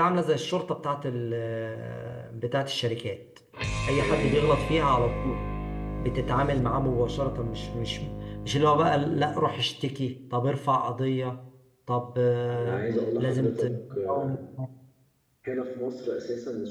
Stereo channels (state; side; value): identical; both; correlation 1.00